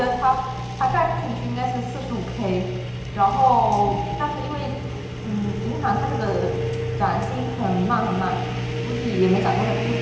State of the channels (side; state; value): both; identical; correlation 1.00